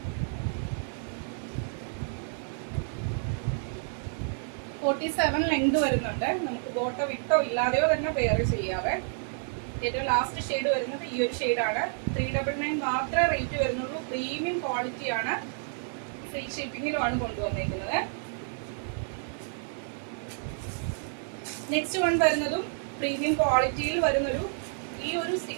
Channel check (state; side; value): silent; left; 55 dB below the other